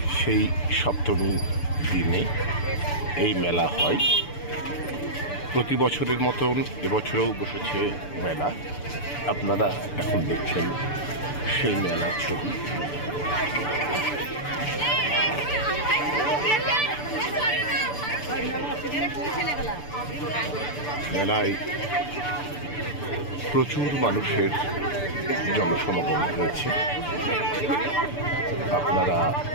সেই সপ্তমী দিনে এই মেলা হয়। প্রতি বছরের মতন এবছরেও বসেছে মেলা। আপনারা এখন দেখছেন সেই মেলার ছবি। মেলায় প্রচুর মানুষের জনসমাগম হয়েছে। আপনারা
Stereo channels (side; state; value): right; late; 6.9 ms